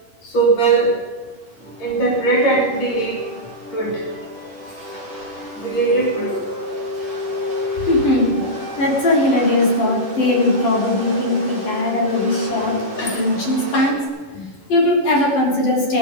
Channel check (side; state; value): right; late; 11 ms